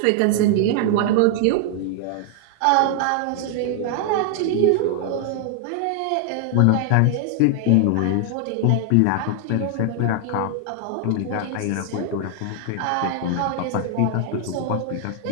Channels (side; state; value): both; different; correlation 0.00